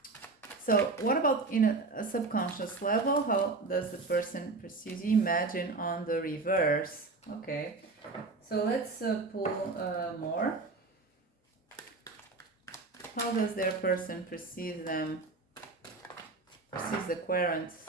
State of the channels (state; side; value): quieter; left; 3.7 dB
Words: So what about in a subconscious level? How does the person perceive you? Imagine on the reverse. Okay, so let's pull more. How does their person perceive the querent